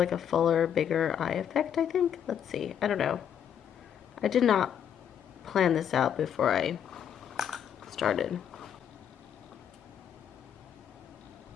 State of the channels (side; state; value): right; quieter; 8.8 dB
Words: a fuller, bigger eye effect, I think. Let's see, I don't know. I did not plan this out before I started.